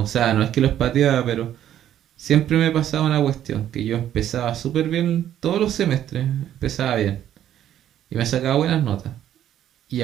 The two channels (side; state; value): left; quieter; 11.2 dB